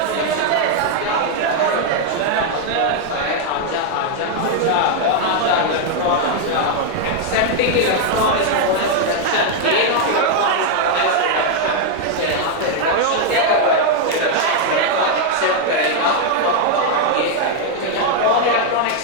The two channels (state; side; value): different; both; correlation 0.00